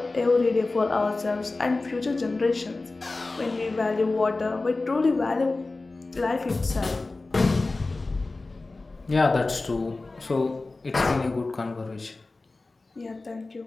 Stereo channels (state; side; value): quieter; right; 3.4 dB